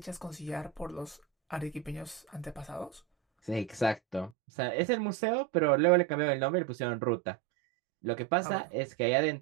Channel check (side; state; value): left; drops out; at 4.3 s